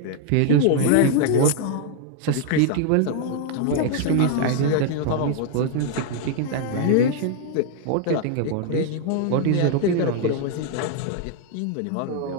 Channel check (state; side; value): different; both; correlation 0.00